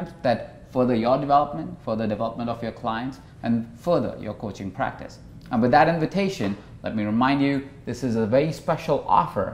that further your development, further development of your clients, and further your coaching practice. And with that invitation, let me remind you, this is a very special offer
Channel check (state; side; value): identical; both; correlation 1.00